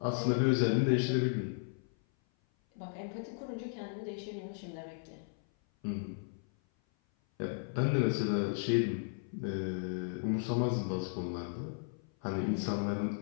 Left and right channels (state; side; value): silent; right; 54 dB below the other